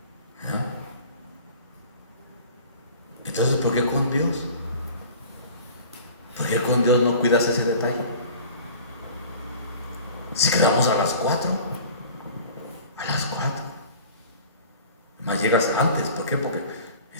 Entonces, ¿por qué con Dios? ¿Por qué con Dios no cuidas ese detalle? Si quedamos a las 4, más llegas antes. ¿Por qué? Porque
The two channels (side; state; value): both; inverted; correlation -0.44